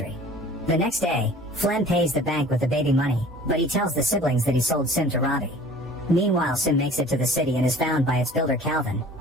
The next day, Flem pays the bank with the baby money, but he tells the siblings that he sold Sim to Robbie. Meanwhile, Sim makes it to the city and is found by its builder Calvin,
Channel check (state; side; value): normal; both; correlation 0.47